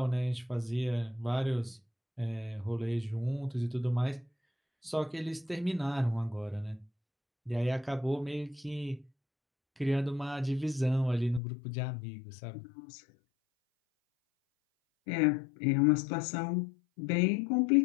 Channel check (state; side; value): drops out; right; at 11.4 s